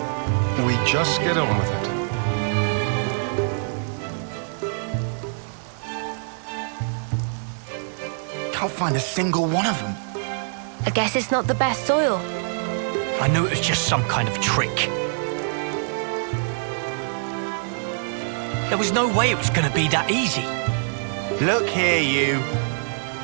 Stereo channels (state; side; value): silent; left; 62 dB below the other